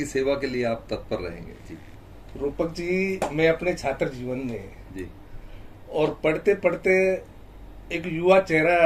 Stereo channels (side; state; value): both; identical; correlation 1.00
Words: सेवा के लिए आप तत्पर रहेंगे? जी रूपक जी, मैं अपने छात्र जीवन में जी और पढ़ते पढ़ते एक युवा